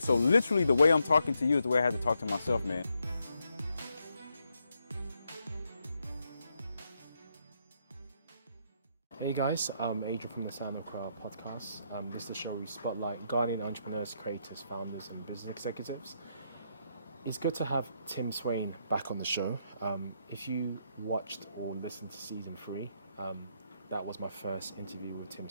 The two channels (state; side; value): inverted; both; correlation -0.79